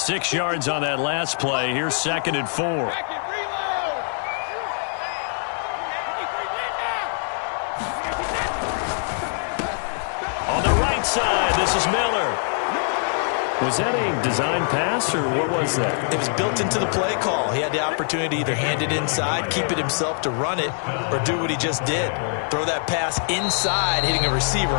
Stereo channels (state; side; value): silent; right; 63 dB below the other